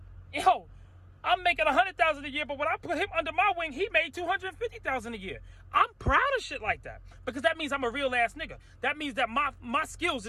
yo, I'm making $100,000 a year, but when I put him under my wing, he made $250,000 a year. I'm proud of shit like that because that means I'm a real ass nigga. That means that my skills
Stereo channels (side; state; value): both; identical; correlation 1.00